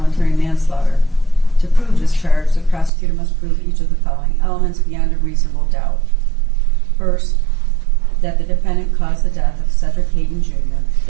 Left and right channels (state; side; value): drops out; left; at 2.9 s